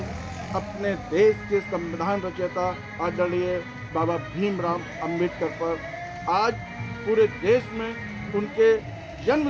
अपने देश के संविधान रचयिता आदरणीय बाबा भीमराव अंबेडकर पर। आज पूरे देश में उनके जन्म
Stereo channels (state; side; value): identical; both; correlation 1.00